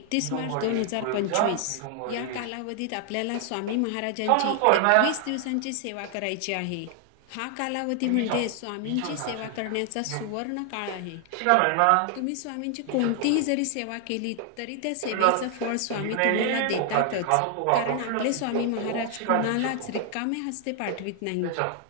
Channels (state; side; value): different; both; correlation 0.00